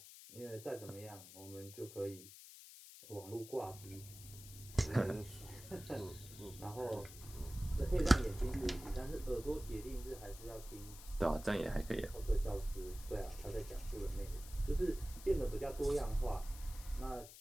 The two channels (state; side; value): noise; left; hiss, 15 dB below the sound